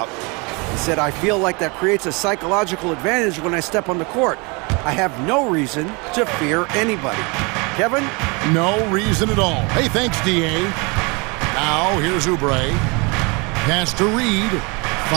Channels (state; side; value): quieter; left; 29.4 dB